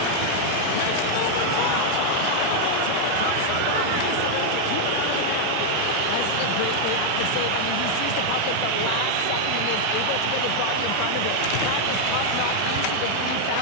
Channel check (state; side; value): different; both; correlation 0.00